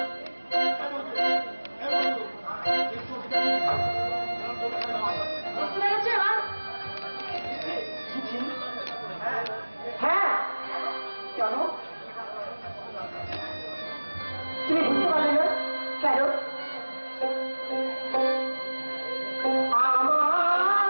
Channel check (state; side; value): inverted; both; correlation -1.00